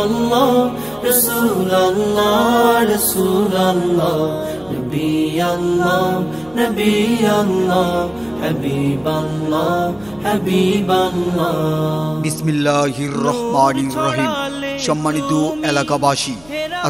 আল্লাহ রাসূল আল্লাহ রাসূল আল্লাহ নবী আল্লাহ নবী আল্লাহ হাবিব আল্লাহ হাবিব আল্লাহ। বিসমিল্লাহির রহমানির রহিম। সম্মানিত এলাকাবাসী,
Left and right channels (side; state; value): left; noise; hum, 26 dB below the sound